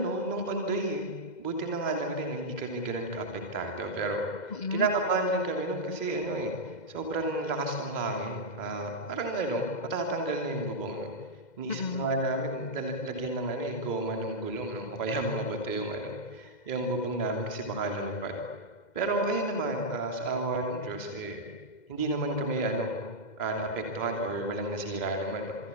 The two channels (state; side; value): late; right; 2.0 ms